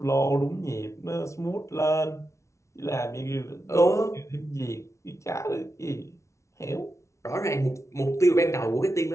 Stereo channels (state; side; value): late; right; 0.14 ms